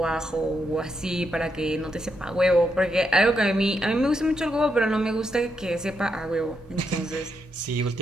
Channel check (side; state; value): both; normal; correlation 0.81